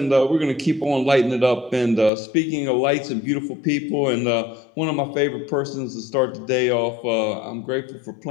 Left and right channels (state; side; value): drops out; right; at 2.1 s